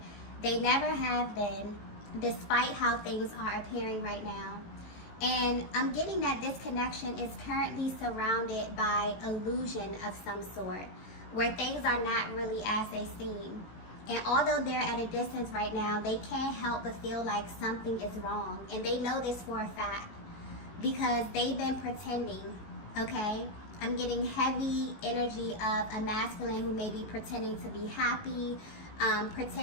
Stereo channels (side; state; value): right; late; 18 ms